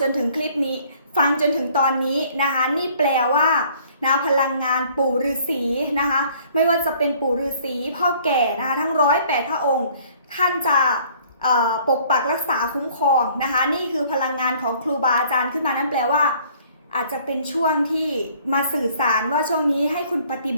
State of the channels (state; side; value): inverted; both; correlation -0.57